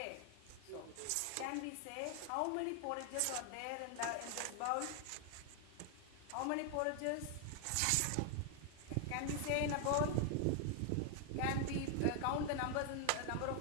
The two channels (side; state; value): both; different; correlation 0.00